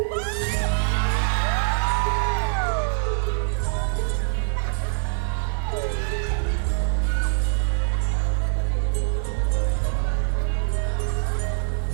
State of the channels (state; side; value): silent; left; digital silence